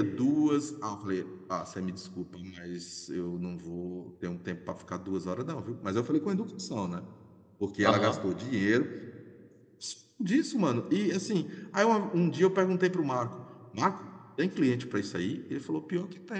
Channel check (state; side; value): identical; both; correlation 1.00